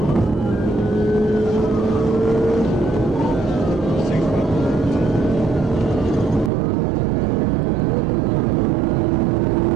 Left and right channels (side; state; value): left; drops out; at 6.5 s